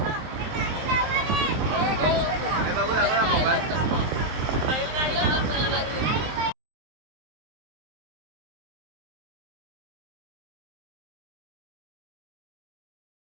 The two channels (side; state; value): left; late; 23 ms